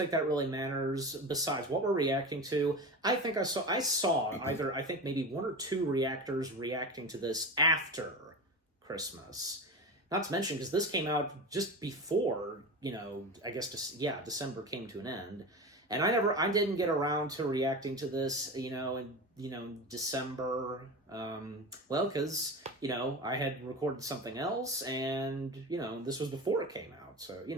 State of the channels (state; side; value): normal; both; correlation 0.27